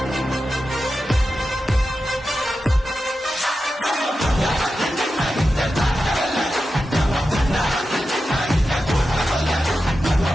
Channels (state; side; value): normal; both; correlation 0.91